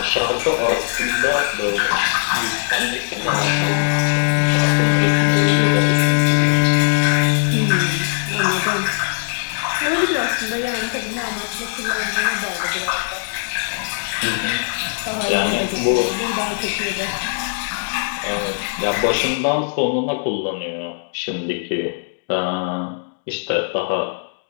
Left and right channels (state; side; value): silent; right; digital silence